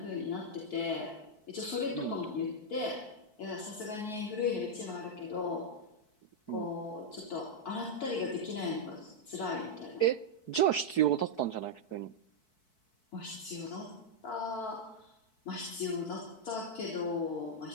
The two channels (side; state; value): right; late; 4.6 ms